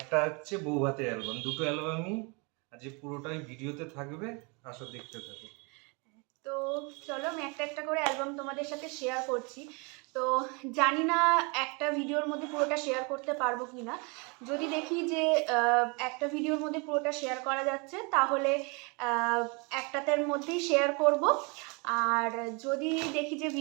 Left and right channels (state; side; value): quieter; left; 31.2 dB